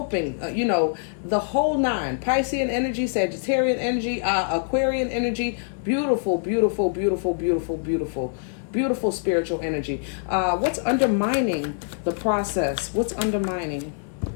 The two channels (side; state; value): right; silent; 57 dB below the other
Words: the whole nine. Piscean energy, Sagittarian energy, Aquarian energy, beautiful, beautiful, beautiful, beautiful, beautiful. Beautiful spiritual energy. What's undermining the process? What's undermining?